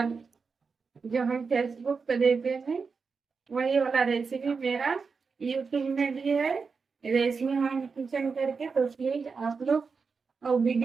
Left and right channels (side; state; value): left; quieter; 5.1 dB